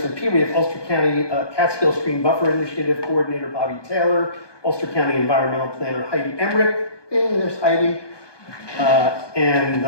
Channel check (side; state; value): right; late; 1.2 ms